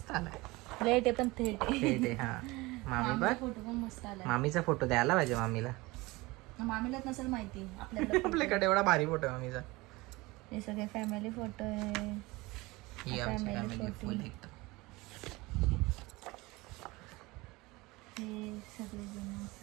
आलाय. लेट आहे पण थेट आहे. थेट आहे. हा, मामी बघ, फोटो पण मस्त आला. मामीचा फोटो द्यायला पाहिजे मामीला. मामीलाच नसेल माहिती आपल्याला. आपल्याकडे एवढा भारी फोटो आहे मामीचा. हे सगळे फॅमिली फोटो आहे. ही आमची फॅमिली फुल एकदम. हे सगळे जण.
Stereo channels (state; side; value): quieter; left; 22.1 dB